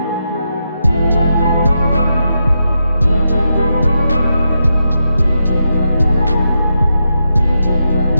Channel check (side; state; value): both; inverted; correlation -0.85